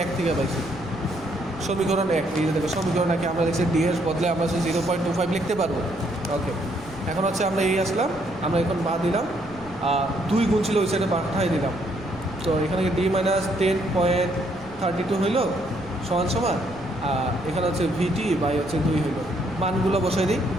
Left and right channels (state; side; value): noise; left; rumble, 18 dB below the sound